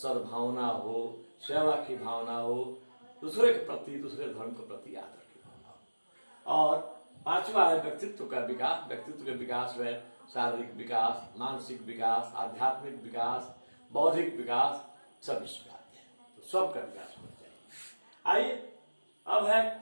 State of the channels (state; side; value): inverted; both; correlation -1.00